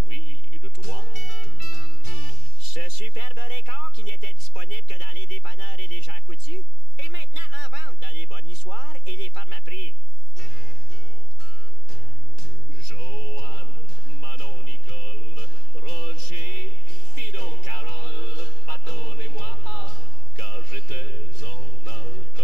de toi. Ce superbe record qui n'était disponible que dans les dépanneurs et les gens coutus est maintenant en vente dans les bonnissoirs et les pharmaprix. Joanne, Manon, Nicole, Roger, Fido, Carole, pardonnez-moi, car j'étais en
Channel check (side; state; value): right; late; 2.3 ms